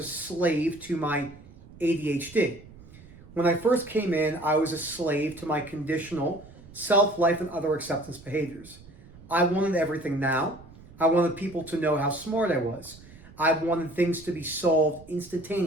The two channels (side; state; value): right; noise; rumble, 21 dB below the sound